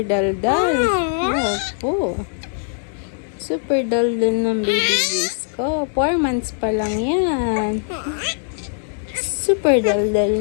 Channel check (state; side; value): silent; right; digital silence